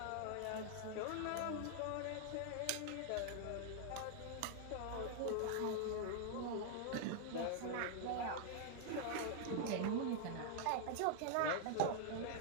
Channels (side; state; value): both; different; correlation -0.01